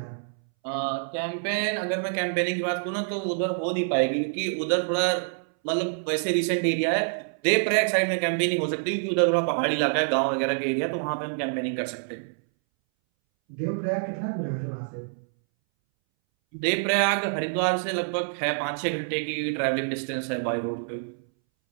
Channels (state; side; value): silent; left; 61 dB below the other